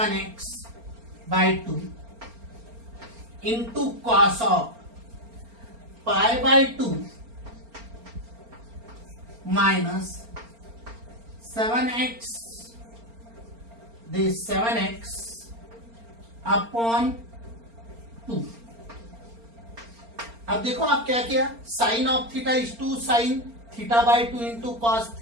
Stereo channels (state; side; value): late; left; 4.3 ms